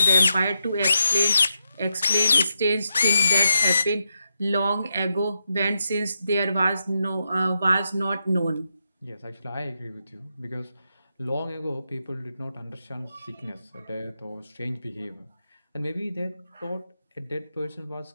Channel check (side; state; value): both; inverted; correlation -0.85